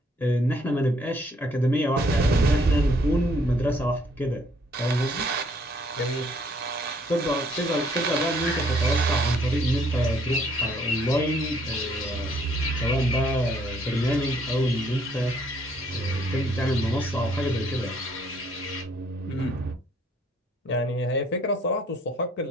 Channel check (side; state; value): both; normal; correlation 0.65